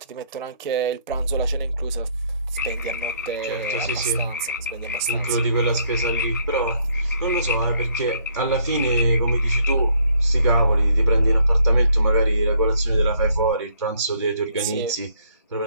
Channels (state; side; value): inverted; both; correlation -0.67